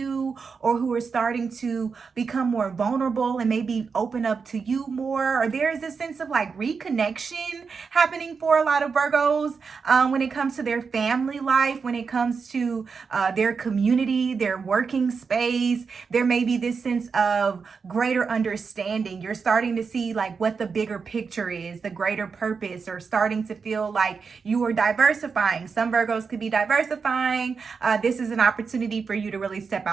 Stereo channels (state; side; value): quieter; left; 5.4 dB